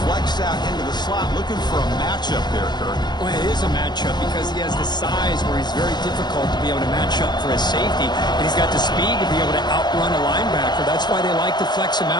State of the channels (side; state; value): right; late; 0.21 ms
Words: flexed out into the slot, looking for a matchup there, Kirk. Well, it is a matchup because he has the size where he's very difficult to be able to match up for his safety, and he's got the speed to be able to outrun a linebacker. That's why they like to flex him